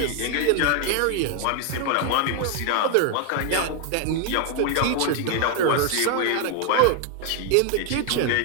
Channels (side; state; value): both; different; correlation 0.00